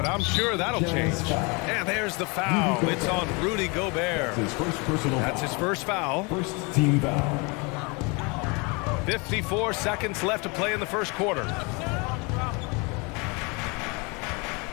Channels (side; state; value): right; quieter; 29.5 dB